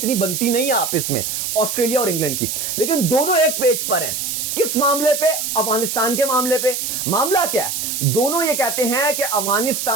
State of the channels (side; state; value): right; noise; hiss, 3 dB below the sound